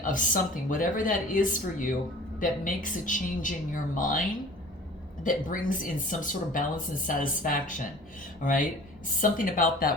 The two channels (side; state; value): both; normal; correlation 0.45